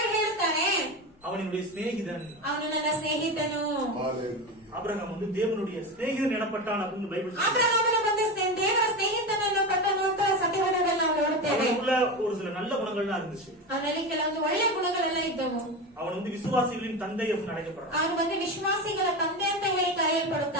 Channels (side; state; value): both; normal; correlation 0.22